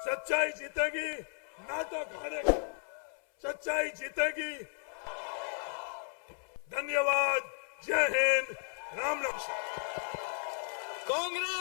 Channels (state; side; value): silent; right; 55 dB below the other